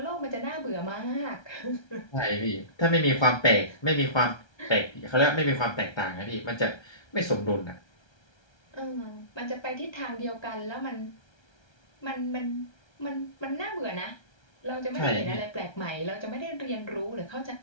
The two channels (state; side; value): late; right; 1.3 ms